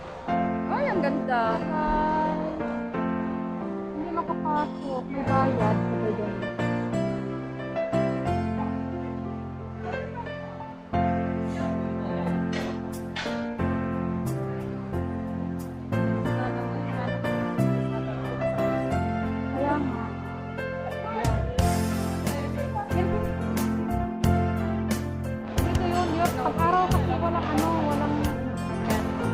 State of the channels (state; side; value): identical; both; correlation 1.00